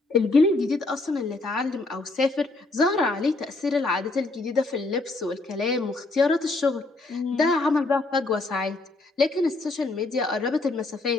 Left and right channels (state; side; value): quieter; right; 3.2 dB